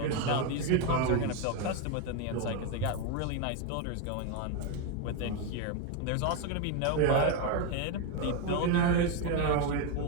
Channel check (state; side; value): different; both; correlation 0.01